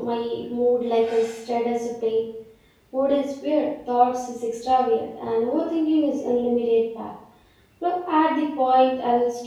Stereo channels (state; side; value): identical; both; correlation 1.00